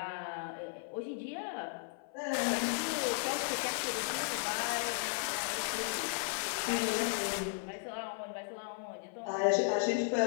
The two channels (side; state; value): right; silent; 54 dB below the other